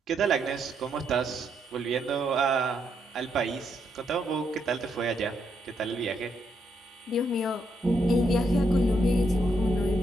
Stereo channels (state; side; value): normal; both; correlation 0.78